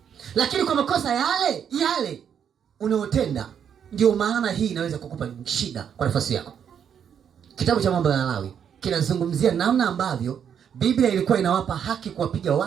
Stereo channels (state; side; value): quieter; left; 8.2 dB